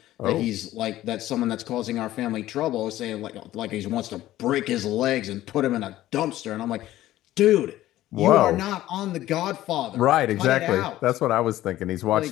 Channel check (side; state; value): right; quieter; 14.7 dB